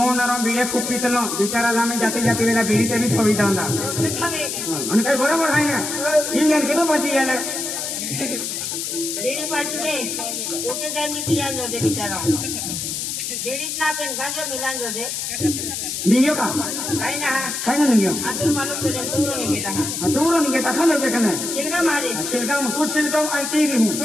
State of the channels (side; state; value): left; noise; hiss, 4 dB below the sound